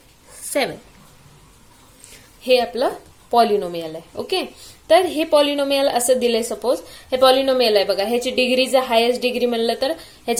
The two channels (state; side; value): identical; both; correlation 1.00